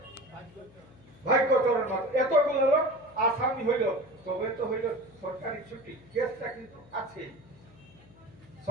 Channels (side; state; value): left; noise; hum, 24 dB below the sound